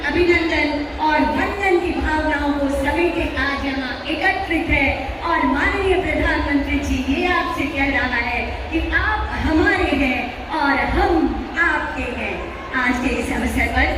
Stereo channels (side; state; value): both; identical; correlation 1.00